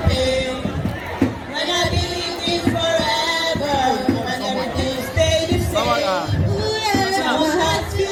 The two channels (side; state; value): both; identical; correlation 1.00